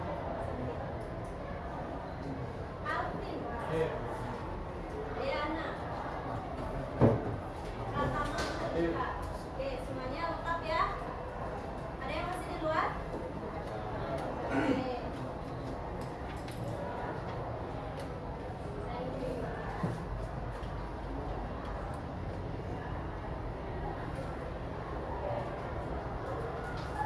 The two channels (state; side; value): identical; both; correlation 1.00